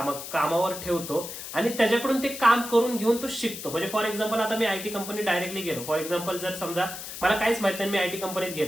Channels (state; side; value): noise; left; hiss, 9 dB below the sound